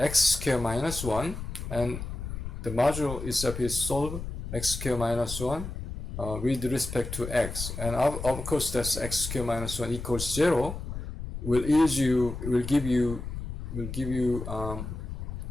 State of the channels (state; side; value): noise; left; rumble, 7 dB below the sound